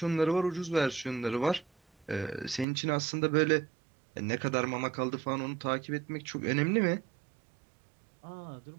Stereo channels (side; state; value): left; drops out; at 2.7 s